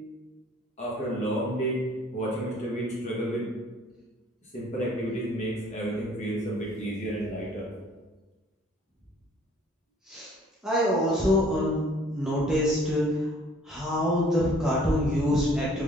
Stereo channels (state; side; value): normal; both; correlation 0.56